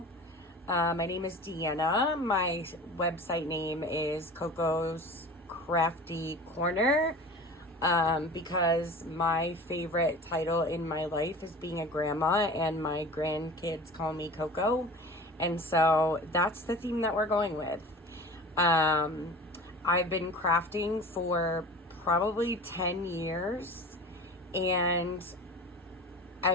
My name is Deanna. My website name is Coco'sCraftyCorner, because my favorite title in my life is being a grandma, and my grandkids call me Coco. And so that's the theme that we're going with. I've been crafting for probably 10 years, and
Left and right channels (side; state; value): both; normal; correlation 0.37